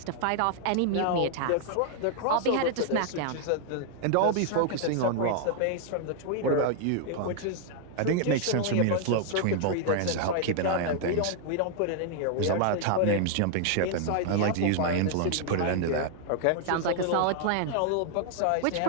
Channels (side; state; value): both; different; correlation 0.00